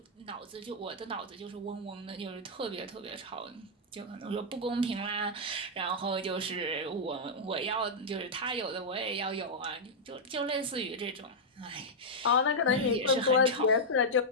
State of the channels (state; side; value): normal; both; correlation -0.05